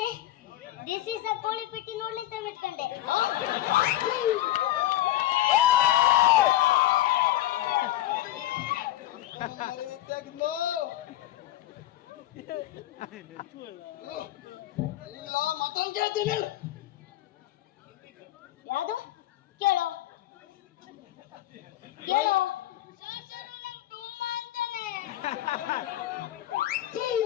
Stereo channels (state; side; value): quieter; right; 14.4 dB